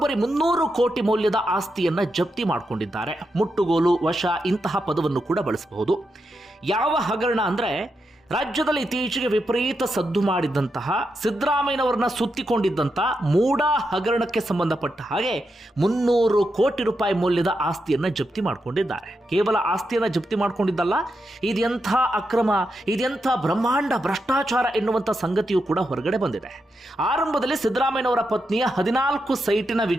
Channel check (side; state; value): both; normal; correlation 0.85